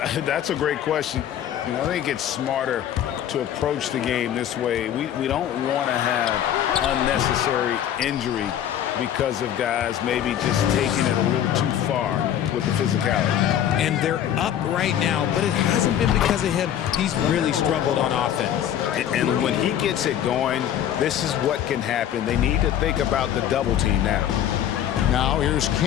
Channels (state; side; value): quieter; right; 10.4 dB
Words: That's a great question. I think it's smarter to approach the game this way. We don't want to have unnecessary injury because of guys maybe just taking it a little too far with the physicality. And they're up right now, but it hasn't been because of him. He's really struggled on offense. And when he gets it going, this is what can happen. They need to think about the double team now. Now here's